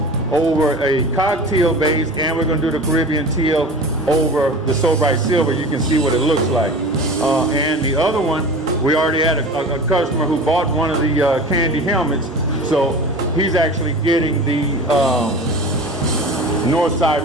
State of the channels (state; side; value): normal; both; correlation 0.36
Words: over a cocktail base, and we're going to do the Carribean Teal over the So Bright Silver. You can see what it looks like. And the other one, we already had a customer who bought one of the candy helmets, so he's actually getting the Northside